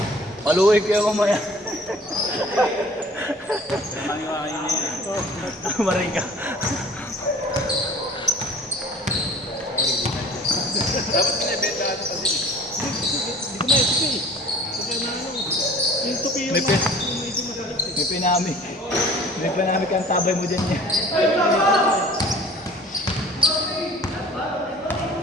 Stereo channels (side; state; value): both; normal; correlation 0.47